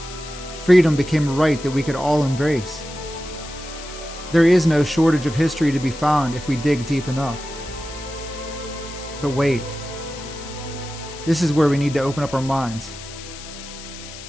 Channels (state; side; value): noise; left; hiss, 14 dB below the sound